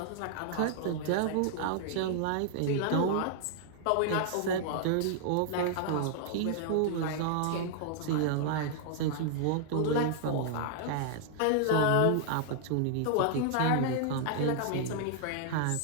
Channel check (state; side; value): different; both; correlation -0.01